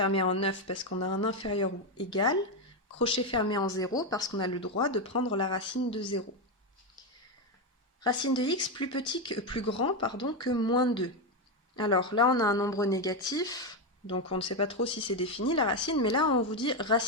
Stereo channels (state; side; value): normal; both; correlation 0.08